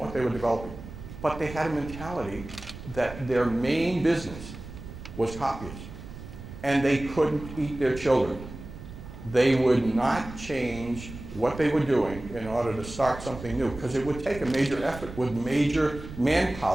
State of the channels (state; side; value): noise; right; rumble, 13 dB below the sound